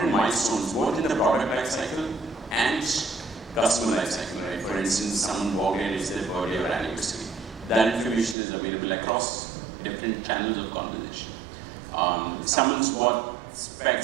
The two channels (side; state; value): left; drops out; at 8.3 s